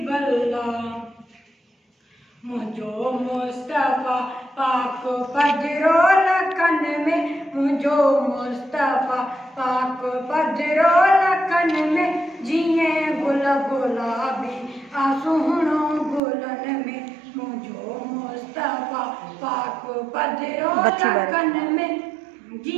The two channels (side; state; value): left; drops out; at 16.2 s